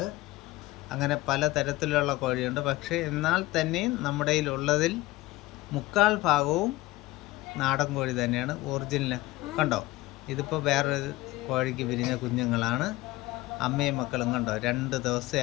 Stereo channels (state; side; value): quieter; right; 19.0 dB